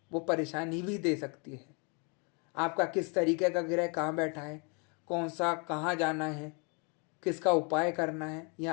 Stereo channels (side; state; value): right; quieter; 34.1 dB